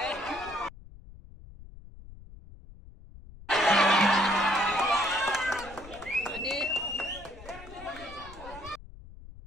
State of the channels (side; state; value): left; noise; rumble, 17 dB below the sound